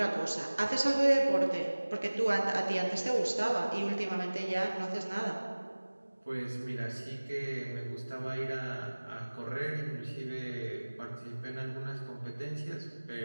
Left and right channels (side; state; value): both; inverted; correlation -1.00